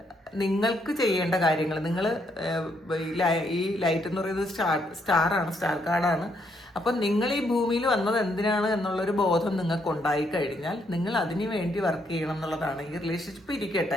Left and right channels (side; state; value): both; normal; correlation 0.74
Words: നിങ്ങൾക്ക് ചെയ്യേണ്ട കാര്യങ്ങൾ നിങ്ങൾ ഈ ലൈറ്റ് എന്ന് പറയുന്നത് സ്റ്റാറാണ്, സ്റ്റാർ കാർഡാണ്. അപ്പം നിങ്ങൾ ഈ ഭൂമിയിൽ വന്നത് എന്തിനാണ് എന്നുള്ളൊരു ബോധം നിങ്ങൾക്ക് ഉണ്ടായി കഴിഞ്ഞാൽ നിങ്ങൾ അതിന് വേണ്ടി വർക്ക് ചെയ്യണം എന്നുള്ളതാണ്. ഈ റിലേഷൻഷിപ്പ്